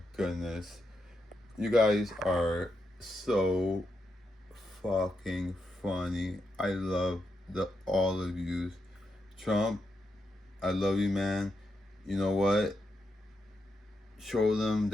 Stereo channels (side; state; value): both; normal; correlation 0.84